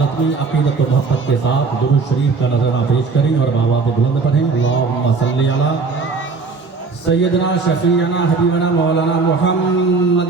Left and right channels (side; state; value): left; quieter; 4.5 dB